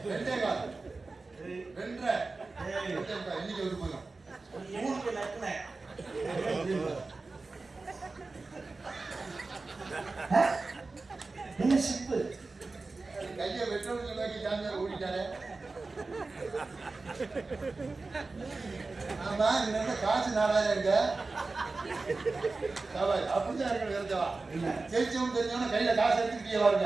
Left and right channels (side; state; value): left; quieter; 3.7 dB